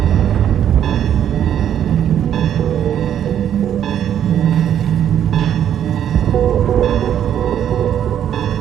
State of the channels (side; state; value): left; quieter; 9.9 dB